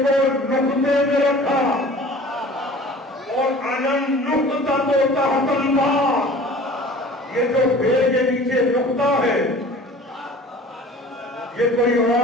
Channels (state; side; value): normal; both; correlation 0.44